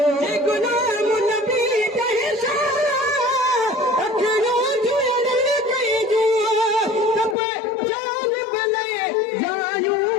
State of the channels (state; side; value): drops out; right; at 7.4 s